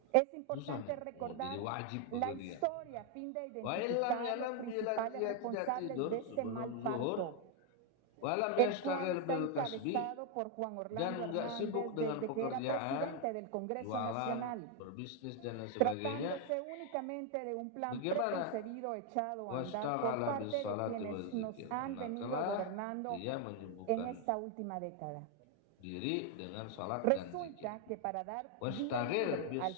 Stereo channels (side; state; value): both; different; correlation 0.01